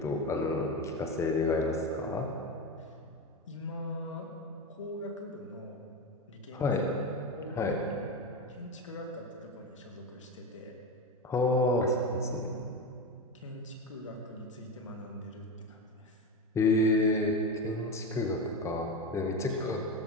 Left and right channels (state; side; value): normal; both; correlation 0.19